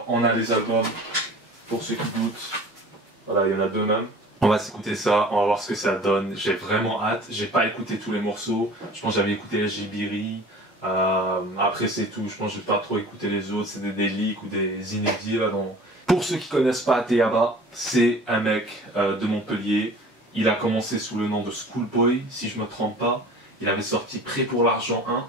on a les albums, pour ceux qui doutent, voilà, il y en a deux même. On va s'écouter ça, on va voir ce que ça donne. J'ai vraiment hâte. J'ai pas écouté tous les morceaux. Je pense que j'avais écouté Jibiri. Après c'est tout. Je pense que j'ai pas trop écouté les autres. C'est des leaks ou des inédits là. Pour ceux qui connaissent pas Ateyaba, c'est un mec de Montpellier. Il a commencé sous le nom de Schoolboy, si je me trompe pas. Il avait sorti Prêt pour l'argent 1,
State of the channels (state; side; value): normal; both; correlation 0.44